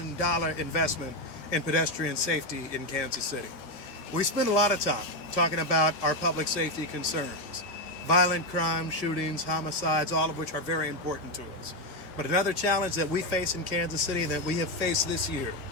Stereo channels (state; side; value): late; right; 13 ms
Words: investment in pedestrian safety in Kansas City. We spend a lot of time talking about our public safety concerns, violent crime, shootings, homicides, all of which are very important to us. But another challenge that we face in Kansas City that we have faced this year